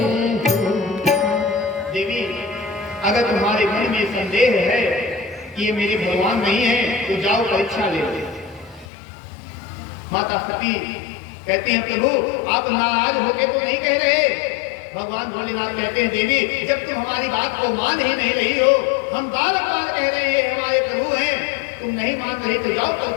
देवी अगर तुम्हारे मन में संदेह है कि ये मेरे भगवान नहीं है तो जाओ परीक्षा ले लो। माता सती कहती हैं प्रभु आप नाराज होके तो नहीं कह रहे? भगवान भोलेनाथ कहते हैं देवी जब तुम हमारी बात को मान ही नहीं रही हो, हम बार बार कह रहे हैं हमारे तुम नहीं मान रहे तो जाओ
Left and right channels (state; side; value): drops out; right; at 8.8 s